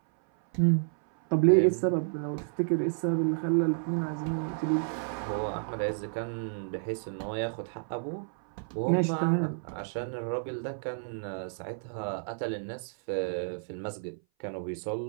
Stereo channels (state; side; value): silent; left; 57 dB below the other